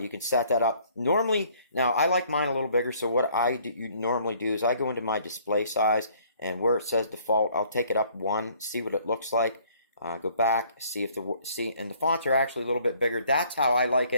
can set that up. Normally, now I like mine a little bigger, so what I normally do is I go into my display size, and where it says default, I'll take it up 1, see what it looks like. Go back, see if and the fonts are actually a little bit bigger. That's how I like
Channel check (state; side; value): inverted; both; correlation -0.60